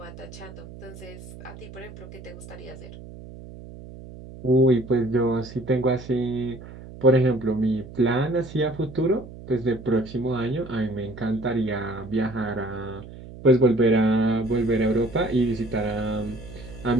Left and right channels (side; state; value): right; noise; hum, 15 dB below the sound